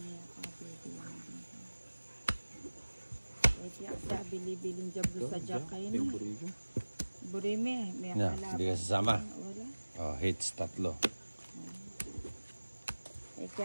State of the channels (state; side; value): inverted; both; correlation -1.00